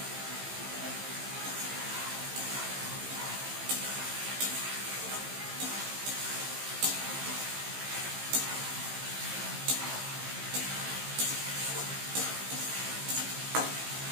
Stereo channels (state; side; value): late; left; 15 ms